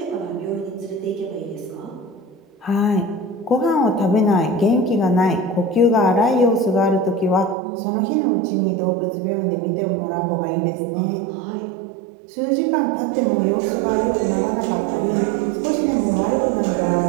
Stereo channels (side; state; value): left; drops out; at 7.6 s